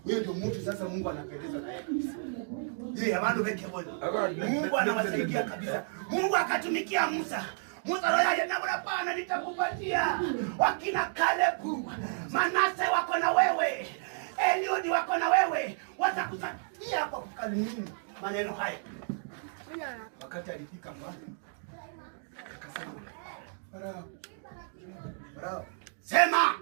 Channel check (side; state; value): left; silent; digital silence